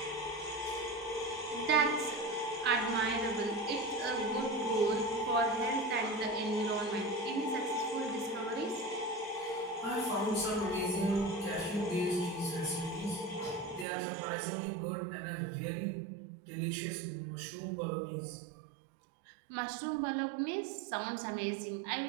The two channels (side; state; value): left; drops out; at 13.9 s